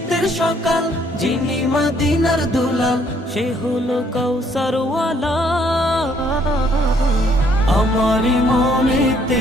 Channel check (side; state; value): both; normal; correlation 0.66